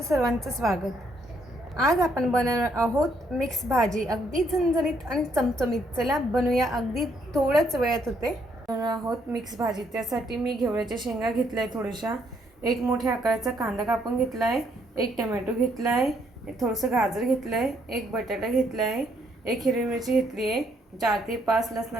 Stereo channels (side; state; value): both; normal; correlation 0.71